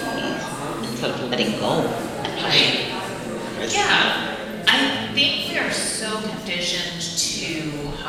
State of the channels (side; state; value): both; identical; correlation 1.00